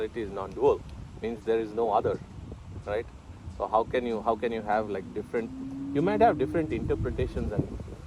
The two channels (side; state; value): both; identical; correlation 1.00